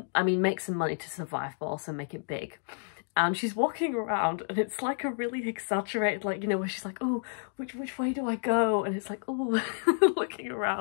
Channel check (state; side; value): silent; right; digital silence